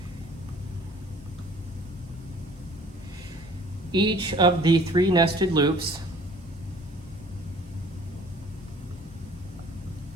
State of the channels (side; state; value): both; normal; correlation 0.52